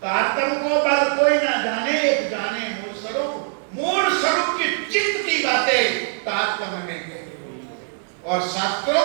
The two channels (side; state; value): left; silent; 64 dB below the other